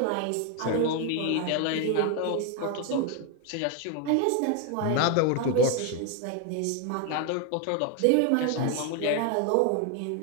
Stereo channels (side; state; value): both; different; correlation 0.01